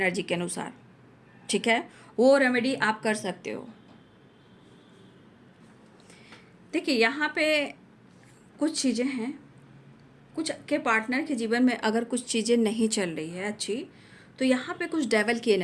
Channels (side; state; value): both; identical; correlation 1.00